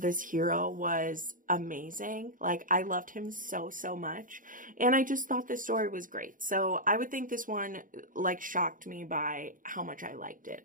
hero was amazing. Like, I loved him so, so much. And I just thought this story was great. So I would think this one, like, shocked me by how much I liked it,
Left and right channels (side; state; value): left; late; 0.39 ms